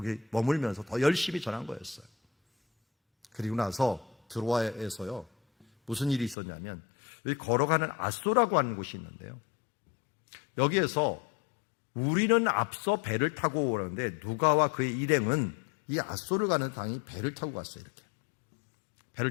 머물면서 더 열심히 전한 거였어요. 그리고 나서 드로아에서요 무슨 일이 있었냐면, 여기 걸어가는 앗소라고 하는 곳이 있는데요, 여기에서 우리는 앞서 배를 타고 오는데 누가와 그의 일행은 이 앗소를 가는 당이 배를 타고 갔어요. 이렇게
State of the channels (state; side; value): drops out; right; at 6.4 s